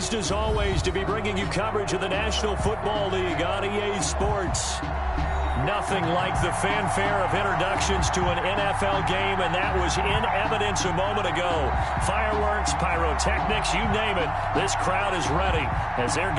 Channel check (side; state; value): both; identical; correlation 1.00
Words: as always to be bringing you coverage of the National Football League on EA Sports. Nothing like the fanfare of introductions to an NFL game, and that was in evidence a moment ago. Fireworks, pyrotechnics, you name it, this crowd is ready as their